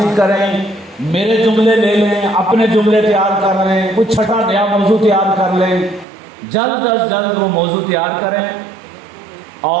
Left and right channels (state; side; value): drops out; left; at 6.1 s